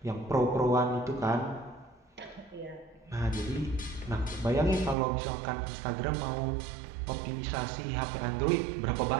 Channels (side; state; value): left; drops out; at 5.0 s